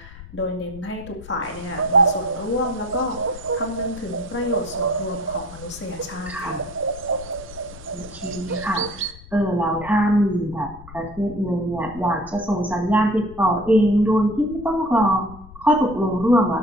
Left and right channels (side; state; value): left; noise; rumble, 17 dB below the sound